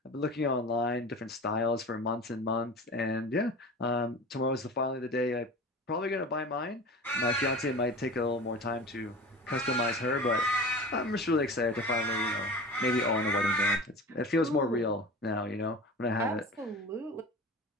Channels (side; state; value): both; normal; correlation 0.35